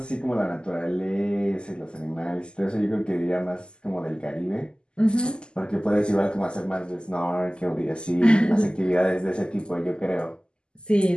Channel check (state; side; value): late; right; 0.048 ms